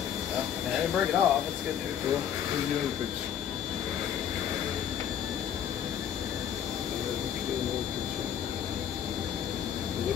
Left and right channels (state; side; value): quieter; right; 9.4 dB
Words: Well, I didn't break it off. That's good news. Well, here's the other piece. Still another piece. A